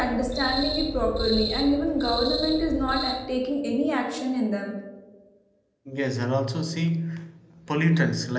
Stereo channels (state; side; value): identical; both; correlation 1.00